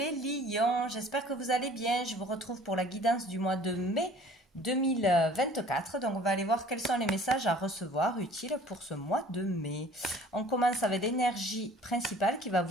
lions, j'espère que vous allez bien. Je vous retrouve pour la guidance du mois de mai 2024. Donc on va aller voir quels sont les messages à recevoir utiles pour ce mois de mai. On commence avec l'énergie principale qui va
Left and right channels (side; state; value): both; normal; correlation 0.51